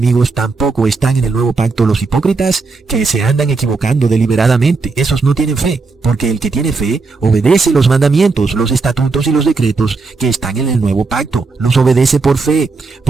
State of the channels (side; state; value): left; quieter; 4.1 dB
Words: tampoco están en el nuevo pacto los hipócritas que se andan equivocando deliberadamente. Esos no tienen fe, porque el que tiene fe obedece los mandamientos, los estatutos y los decretos que están en el nuevo pacto. Los obedece por fe.